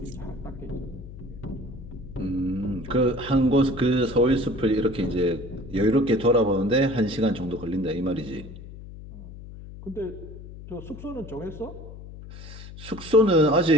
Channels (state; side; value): noise; left; hum, 14 dB below the sound